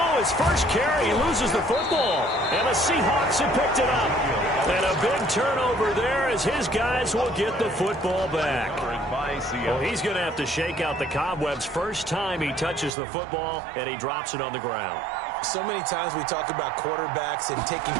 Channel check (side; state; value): left; drops out; at 12.9 s